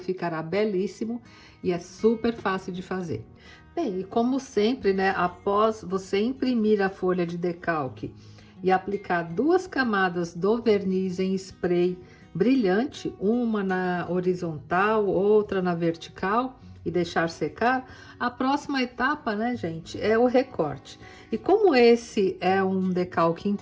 belíssimo e é super fácil de fazer. Bem, e como sempre, né, após você imprimir a folha de decalque e aplicar 2 camadas do verniz em spray brilhante, uma na horizontal, outra na vertical, e deixar secar, a próxima etapa, né, gente, é o recorte. E como esse é um decalque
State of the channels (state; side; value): identical; both; correlation 1.00